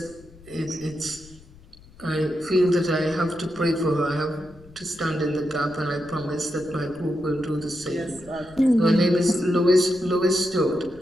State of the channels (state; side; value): noise; left; rumble, 23 dB below the sound